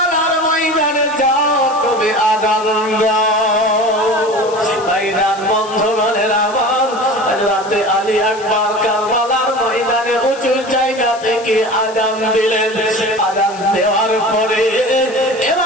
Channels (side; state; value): left; noise; hiss, 18 dB below the sound